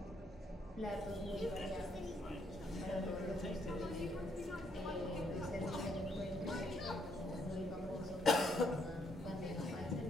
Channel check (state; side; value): normal; both; correlation 0.72